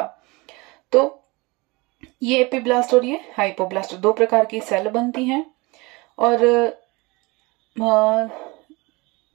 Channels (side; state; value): left; quieter; 24.9 dB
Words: तो ये एपीब्लास्ट और ये हाइपोब्लास्ट 2 प्रकार की सेल बनती हैं। और